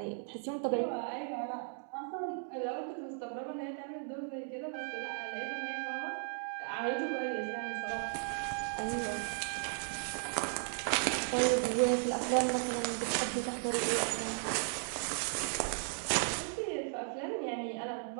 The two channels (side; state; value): left; silent; 54 dB below the other